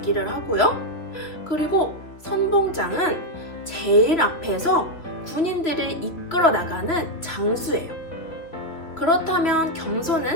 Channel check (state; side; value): late; right; 2.8 ms